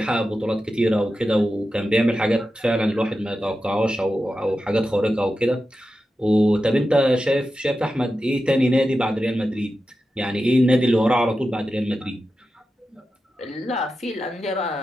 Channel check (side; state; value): both; normal; correlation 0.91